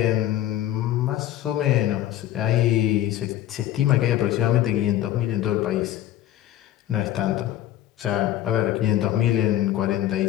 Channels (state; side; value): quieter; right; 13.0 dB